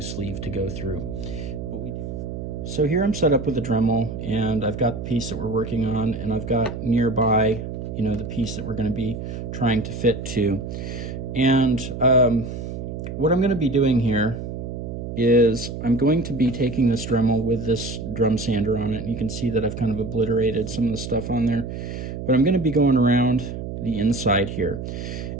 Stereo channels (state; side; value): noise; right; hum, 7 dB below the sound